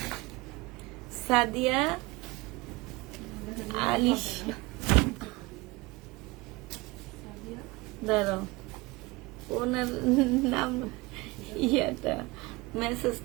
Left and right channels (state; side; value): quieter; left; 23.1 dB